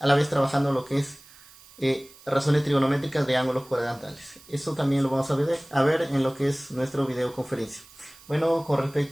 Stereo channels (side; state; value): right; noise; hiss, 23 dB below the sound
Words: la vez trabajando lo que es razones trigonométricas de ángulos cuadrantales. Eso también lo vamos a ver en lo que es nuestro videoconferencia. Bueno, con